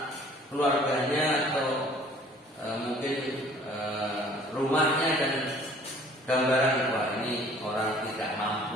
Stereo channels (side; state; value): both; normal; correlation 0.54